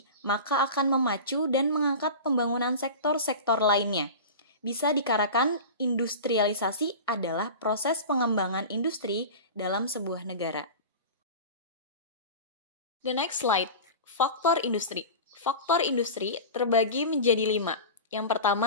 maka akan memacu dan mengangkat pembangunan sektor-sektor lainnya. Bisa dikatakan industrialisasi adalah proses pengembangan industri dalam sebuah negara. The next slide, faktor industri. Faktor industri terbagi menjadi 5. Yang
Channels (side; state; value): both; inverted; correlation -0.31